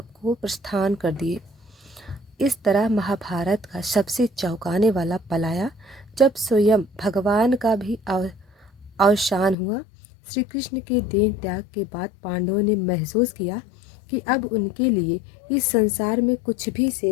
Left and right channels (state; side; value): drops out; right; at 9.6 s